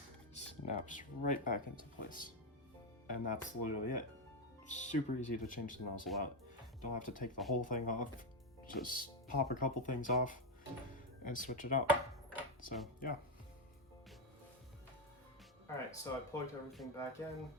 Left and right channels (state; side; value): normal; both; correlation 0.06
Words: snaps right back into place. And that's literally it. Super easy to change the nozzle out. Don't have to take the whole thing off. Just pop a couple things off and switch it out. So yeah. All right, so I plugged everything back in,